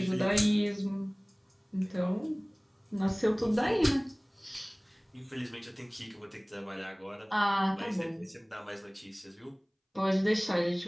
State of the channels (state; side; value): identical; both; correlation 1.00